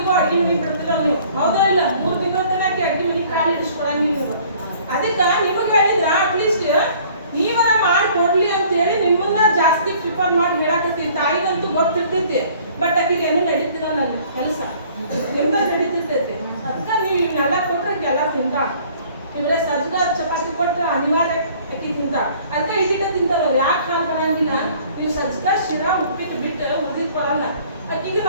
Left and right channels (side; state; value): both; inverted; correlation -0.54